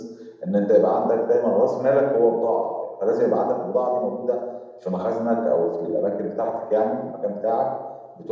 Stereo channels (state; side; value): identical; both; correlation 1.00